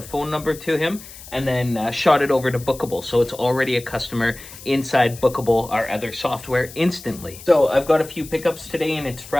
phone number to him, and then shot it over to Bookable. So it's already a customer inside Bookable, our other software, instantly. So I've got a few pickups today and it's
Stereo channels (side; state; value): left; noise; hiss, 17 dB below the sound